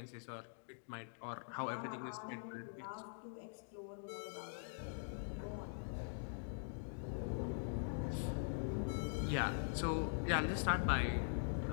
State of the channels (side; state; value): right; silent; digital silence